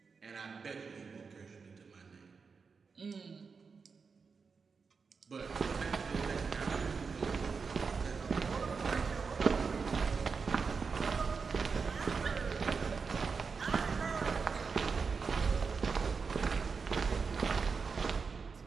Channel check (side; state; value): left; quieter; 5.2 dB